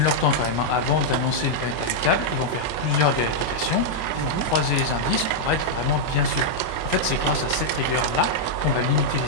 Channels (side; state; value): right; late; 25 ms